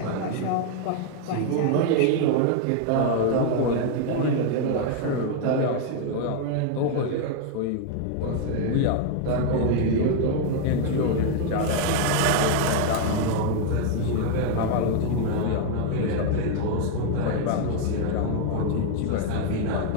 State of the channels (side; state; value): both; different; correlation 0.00